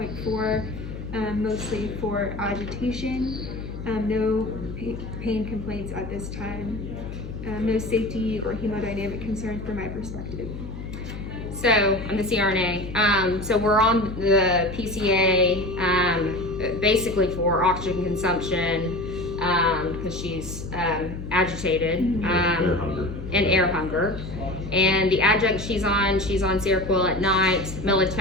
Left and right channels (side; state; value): left; noise; hum, 9 dB below the sound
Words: mostly for agitation. No pain complaints at this time. No safety or hemodynamic concerns from my perspective. So on the CRNA, so we're on the PCA basically for oxygen consumption because she's agitated Air hunger. and air hunger. And the adjunct she's on Seroquel at night,